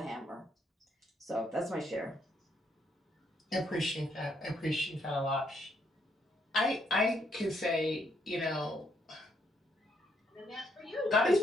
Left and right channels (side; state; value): both; normal; correlation 0.73